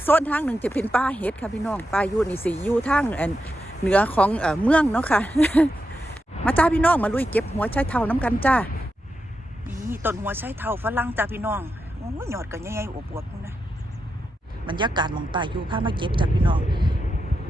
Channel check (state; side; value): normal; both; correlation 0.87